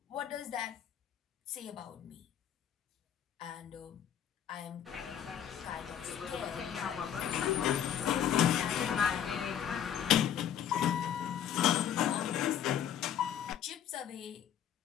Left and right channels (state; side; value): quieter; right; 9.6 dB